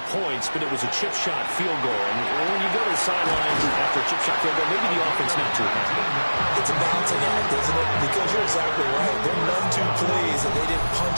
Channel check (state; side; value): inverted; both; correlation -1.00